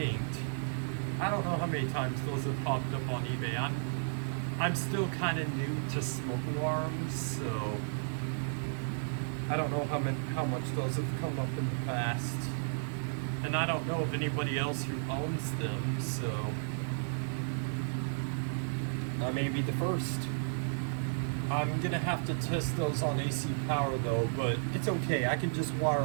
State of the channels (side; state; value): left; silent; digital silence